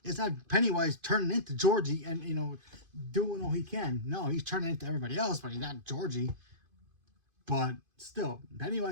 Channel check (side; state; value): left; late; 2.5 ms